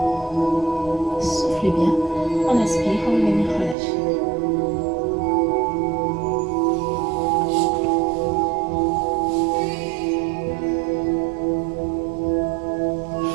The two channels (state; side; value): drops out; left; at 3.8 s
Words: Soufflez bien. On inspire, on va venir relâcher.